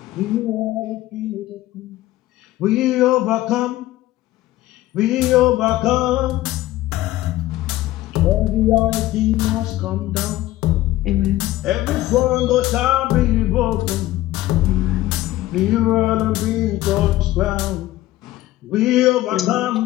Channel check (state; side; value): quieter; right; 16.0 dB